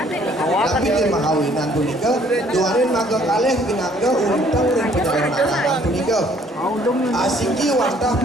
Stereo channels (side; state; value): both; normal; correlation 0.61